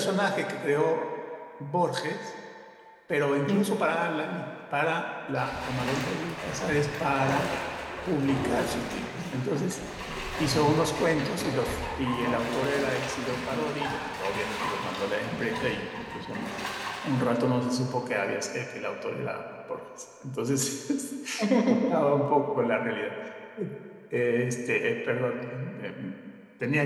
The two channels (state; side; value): identical; both; correlation 1.00